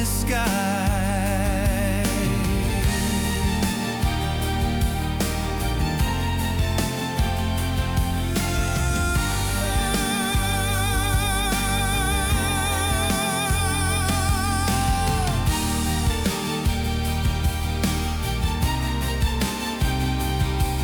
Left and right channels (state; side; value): identical; both; correlation 1.00